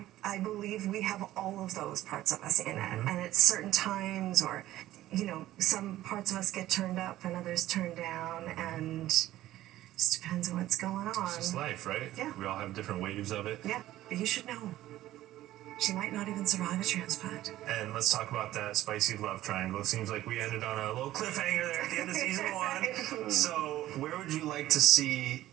I believe we have all of those parts of us in it, and at certain times, or some parts of us get turned up and others turned down, and it just depends on what's going on. It's just life, right? Yeah. We all have different waves of it. Yeah, but you should know, she might not even survive a transplant. And let's talk about that spicy love triangle. It seems like we ended on a little cliffhanger there at the end of season 1. So where would you like to see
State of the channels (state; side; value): quieter; left; 14.6 dB